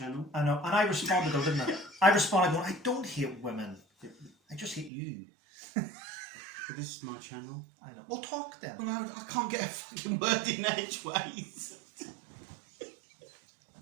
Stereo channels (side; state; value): left; drops out; at 4.9 s